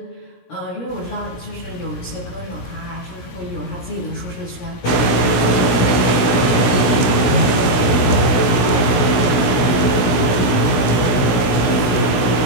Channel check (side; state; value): right; late; 16 ms